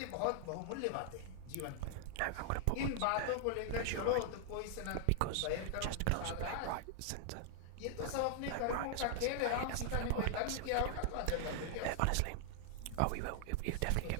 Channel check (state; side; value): different; both; correlation 0.00